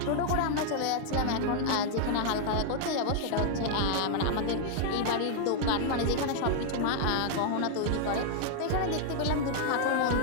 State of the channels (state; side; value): different; both; correlation 0.00